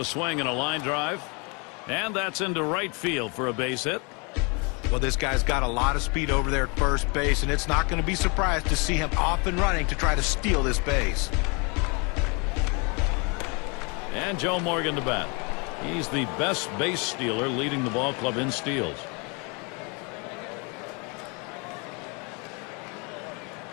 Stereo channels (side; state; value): right; quieter; 32.0 dB